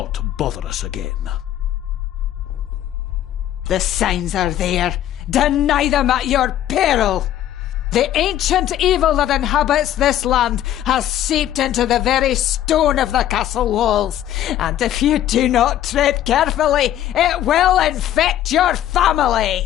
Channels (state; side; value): quieter; right; 12.0 dB